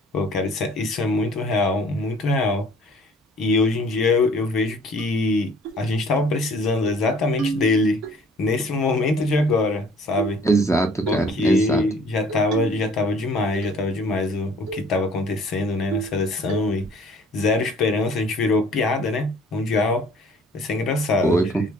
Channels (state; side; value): normal; both; correlation 0.54